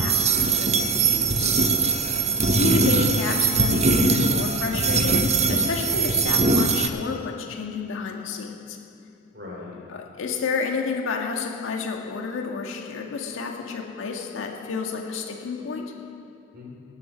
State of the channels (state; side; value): normal; both; correlation 0.20